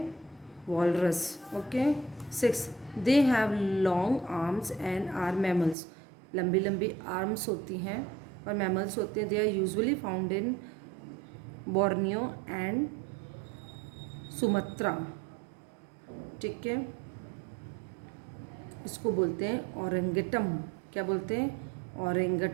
Walrus. Okay. 6 they have long arms and are mammals. लंबी लंबी आर्म्स होती हैं और मैमल्स होते हैं। They are usually found in Borneo and Sumatra. ठीक है, इसको बोलते हैं ओरेंगटम। क्या बोलते हैं?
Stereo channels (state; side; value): drops out; left; at 5.8 s